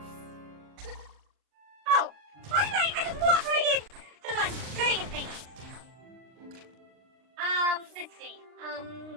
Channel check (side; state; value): left; late; 39 ms